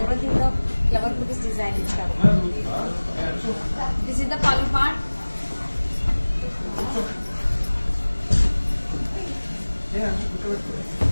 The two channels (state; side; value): inverted; both; correlation -1.00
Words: థీమ్ లో ఫ్లవర్ బూటీస్ డిజైన్ ఇచ్చారు. This is the pallu part.